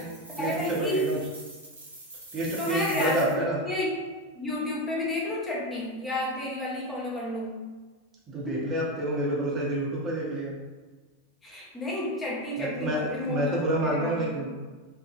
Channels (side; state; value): both; normal; correlation 0.15